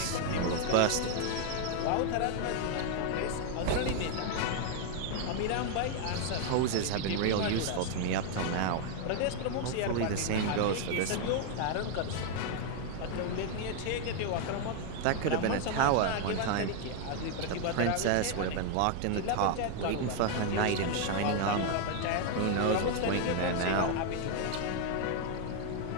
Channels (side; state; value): both; different; correlation 0.00